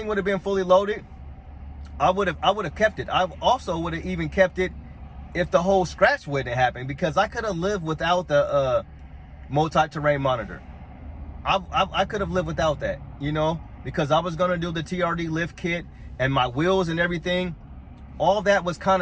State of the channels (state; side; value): identical; both; correlation 1.00